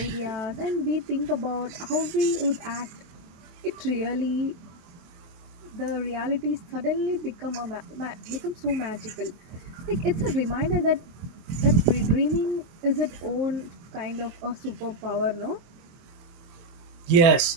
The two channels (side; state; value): left; late; 23 ms